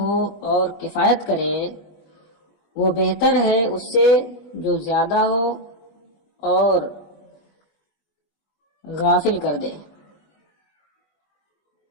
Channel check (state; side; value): late; right; 20 ms